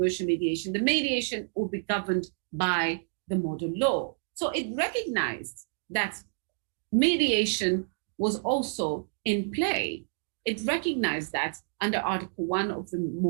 mediation, the mediation will be governed by the model law. So it recognized that mediation was also in play. It recognized that under Article 1 of the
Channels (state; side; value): silent; left; digital silence